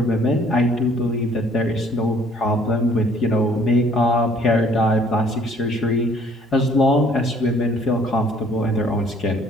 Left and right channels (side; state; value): both; normal; correlation 0.59